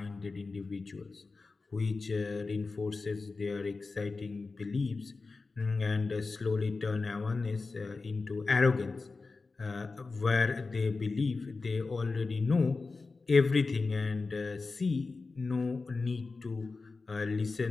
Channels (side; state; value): right; quieter; 3.9 dB